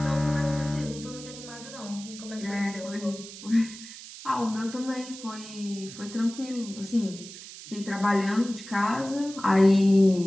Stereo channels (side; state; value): right; noise; hiss, 14 dB below the sound